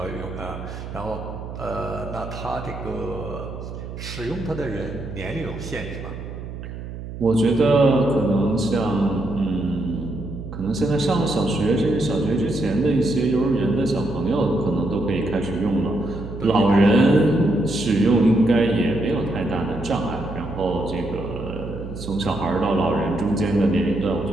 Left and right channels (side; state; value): right; noise; hum, 10 dB below the sound